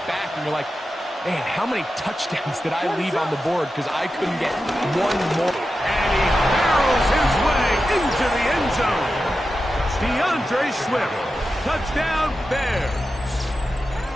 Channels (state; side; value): normal; both; correlation 0.91